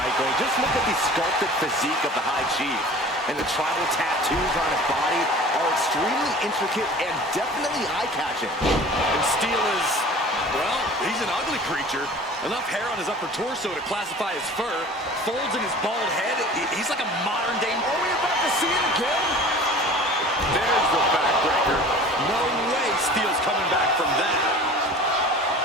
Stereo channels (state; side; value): normal; both; correlation 0.43